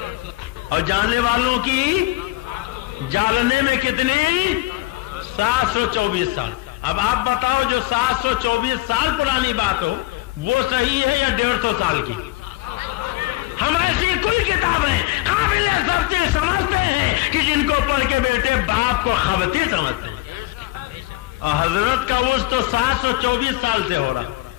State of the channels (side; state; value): right; quieter; 19.7 dB